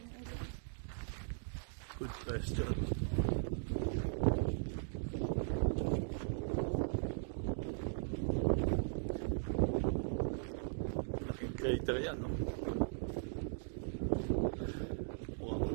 earlier? Good question. Laking crater yan, no?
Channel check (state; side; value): silent; left; digital silence